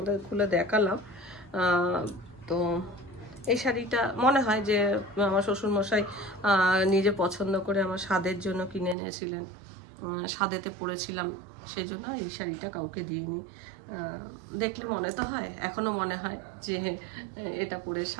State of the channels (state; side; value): drops out; left; at 9.0 s